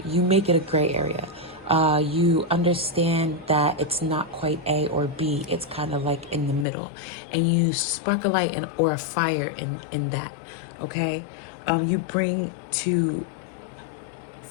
You make it a gray area. You understand that it's not quite A or B. It's kind of like in the middle, and you spark a light or a fire in that. Okay, you bring to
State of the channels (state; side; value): drops out; right; at 6.7 s